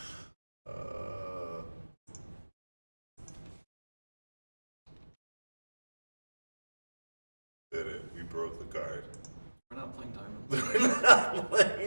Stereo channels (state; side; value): inverted; both; correlation -1.00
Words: Did it. We broke the card. We're not playing Diamond We're Lion. not